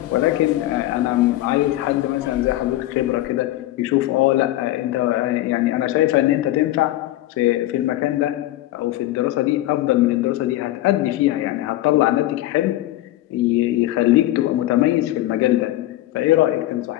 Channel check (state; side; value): quieter; right; 15.5 dB